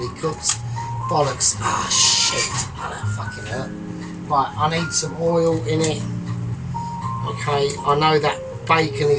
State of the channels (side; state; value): both; identical; correlation 1.00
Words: cooked. Bollocks. Ah, shit. Oh, that fucking hurt. Right, I need some oil in it. Okay, I know that bacon